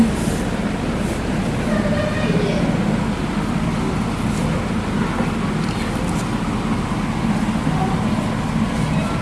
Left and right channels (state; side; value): identical; both; correlation 1.00